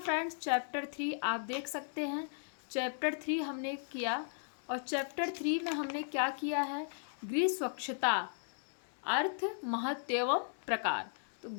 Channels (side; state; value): right; silent; digital silence